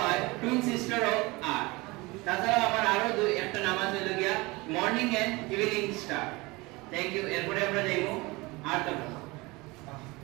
টুইন সিস্টার অফ আর্থ। তাছাড়া আমার আরো একটা নাম আছে হলো গিয়া morning and evening star. Thank you. এরপরে আমরা যাইবো আর্থ গ্রহ।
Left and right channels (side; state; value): left; quieter; 23.5 dB